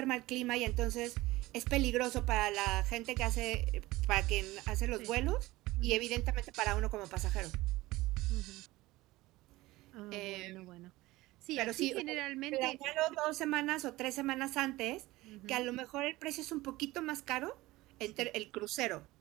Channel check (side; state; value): left; quieter; 18.9 dB